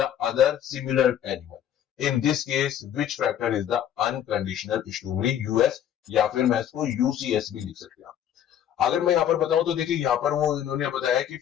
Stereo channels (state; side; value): quieter; right; 10.2 dB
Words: other similar animal. In this case, which factor is the unconditional stimuli? US या फिर मैं इसको UCS भी लिख सकते हैं। अगर मैं यहाँ पर बताऊं तो देखिए, यहाँ पर वो इन्होंने बताया कि